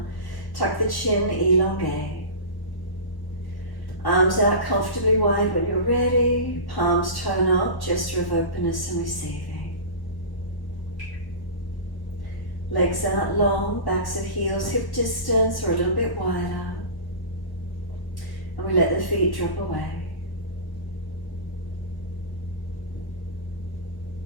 tuck the chin, elongate. Arms out comfortably wide when you're ready, palms tone up, gesture of openness and receiving. Legs out long, backs at heels, hip distance or a little bit wider. And we let the feet drop away.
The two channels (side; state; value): right; late; 1.2 ms